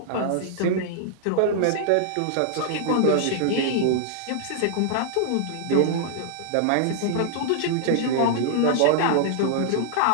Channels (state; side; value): different; both; correlation -0.01